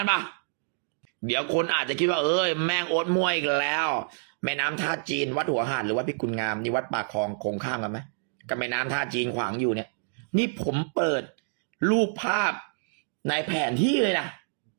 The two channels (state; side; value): silent; left; digital silence